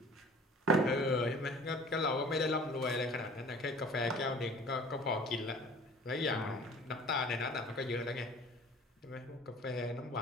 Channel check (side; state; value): both; normal; correlation 0.47